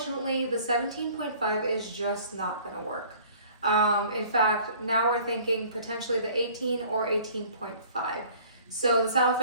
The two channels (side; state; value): both; inverted; correlation -0.52